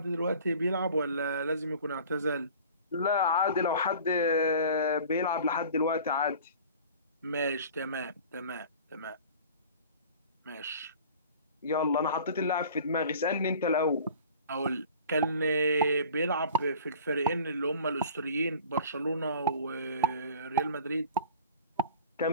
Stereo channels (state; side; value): inverted; both; correlation -0.44